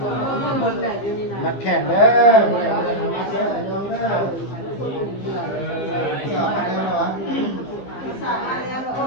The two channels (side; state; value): right; late; 15 ms